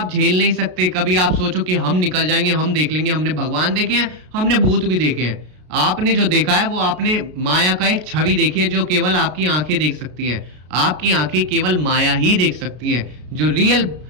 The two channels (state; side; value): late; left; 33 ms